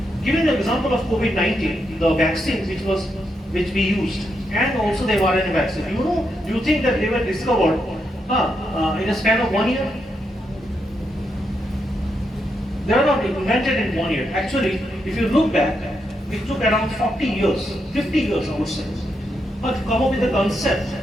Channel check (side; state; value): both; normal; correlation 0.82